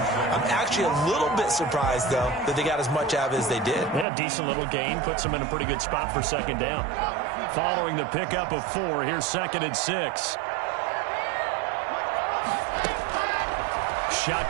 I'm actually a little bit surprised, though, that they got as much out of it as they did. Yeah, decent little gain. Puts them in a pretty good spot for 2nd down. Following the pickup of 4, here's 2nd and 6.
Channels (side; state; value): left; drops out; at 4.0 s